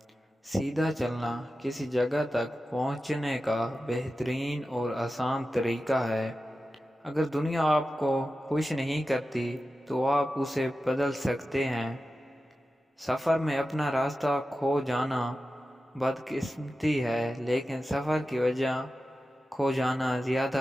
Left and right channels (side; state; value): both; normal; correlation 0.93